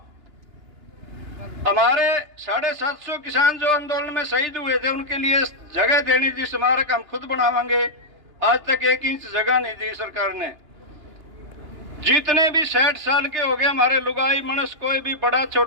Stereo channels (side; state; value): left; late; 2.9 ms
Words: हमारे 750 किसान जो आंदोलन में शहीद हुए थे उनके लिए जगह देनी थी, स्मारक हम खुद बनावांगे। आज तक 1 इंच जगह नहीं दी सरकार ने। जितने भी 60 साल के हो गए हमारे लुगाई मनुष्य, कोई भी बड़ा